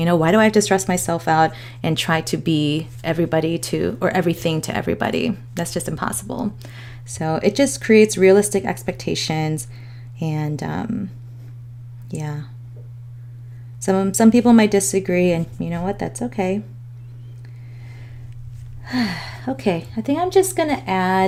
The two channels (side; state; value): both; identical; correlation 1.00